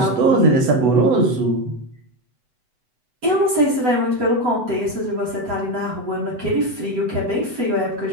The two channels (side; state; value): left; late; 8.0 ms